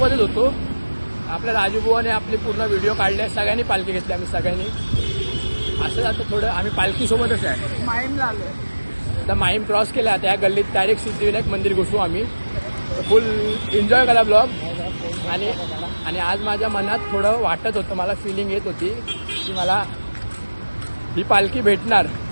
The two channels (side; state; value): both; inverted; correlation -1.00